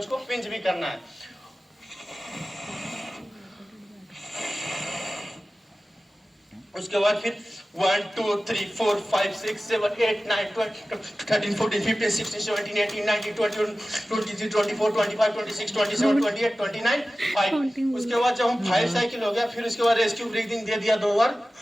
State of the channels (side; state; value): both; normal; correlation 0.96